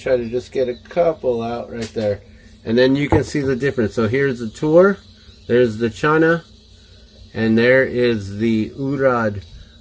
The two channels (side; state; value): both; identical; correlation 1.00